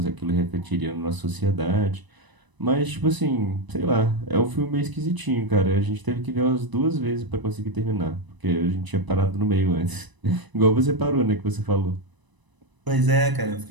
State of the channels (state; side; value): late; left; 1.0 ms